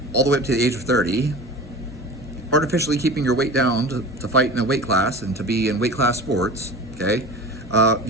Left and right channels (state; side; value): normal; both; correlation 0.35